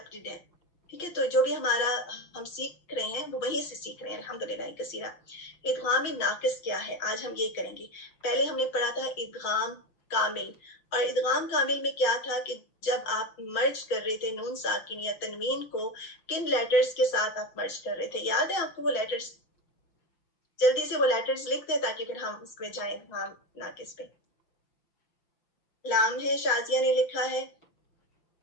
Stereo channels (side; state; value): right; late; 5.8 ms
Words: ہے، ٹھیک ہے. تو جو بھی ہم سیکھ رہے ہیں وہ وہیں سے سیکھ رہے ہیں الحمدللہ کثیرہ. ادغام ناقص کیا ہے آج ہم یہ کریں گے. پہلے ہم نے پڑھا تھا ادغام کامل، اور ادغام کامل میں کیا تھا کہ جب آپ مرج کر رہے تھے نون ساکن یا تنوین کو، کن لیٹرز کے ساتھ آپ مرج کر رہے تھے؟ یاد ہے آپ کو وہ لیٹرز؟ جلدی سے وہ لیٹرز لکھ دیں تاکہ پھر ہم اس پہ جائیں ادغام ناقص پہ. لام ہے، شازیہ نے لکھا ہے